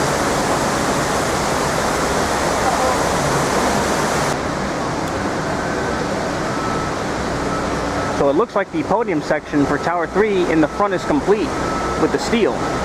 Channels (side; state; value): both; identical; correlation 1.00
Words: So it looks like the podium section for Tower 3 in the front is complete with the steel.